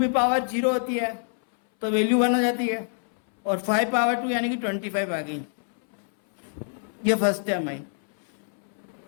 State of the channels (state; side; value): silent; right; 61 dB below the other